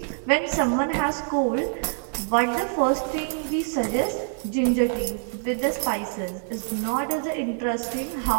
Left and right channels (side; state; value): left; silent; 61 dB below the other